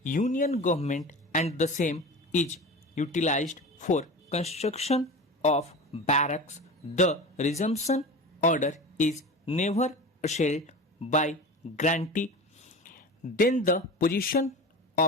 union government and the same is utilized for construction of barracks, the resumption order is never assailed by grantee. Then the possession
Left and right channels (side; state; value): both; normal; correlation 0.32